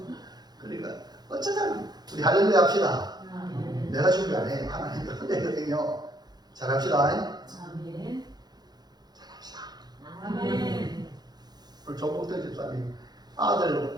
그러니까 어쩌면 우리 할렐루야 합시다. 내가 준비 안 해. 하나님 은혜거든요. 잘합시다. 아멘. 잘합시다. 아멘. 오늘 조복대 집사님 아들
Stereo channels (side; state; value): left; late; 0.20 ms